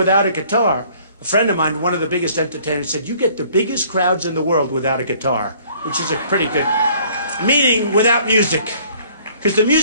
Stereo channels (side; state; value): both; inverted; correlation -0.57